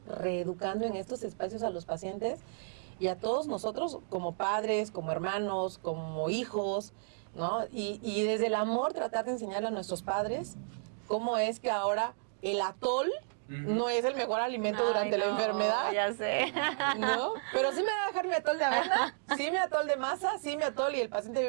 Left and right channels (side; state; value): left; silent; digital silence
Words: reeducando en estos espacios a los pacientes y a todos nosotros como padres, como hermanos, como hijos, ¿no? Y desde el amor tratar de enseñarle a nuestros padres cómo es que ahora el atol no es el mejor alimento durante la enfermedad. Ya sé. ¿No? Pero sí me va a dejar mi atol de avena, sí mi atol de masa, sí mi atol y el paciente